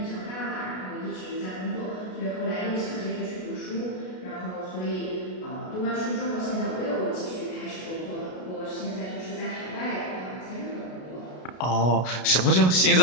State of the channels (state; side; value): late; right; 33 ms